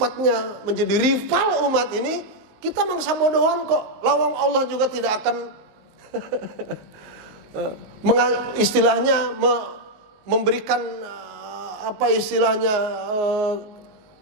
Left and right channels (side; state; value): left; late; 19 ms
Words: menjadi rival umat ini, kita mangsa bodohan kok. Lawang Allah juga tidak akan istilahnya memberikan apa istilahnya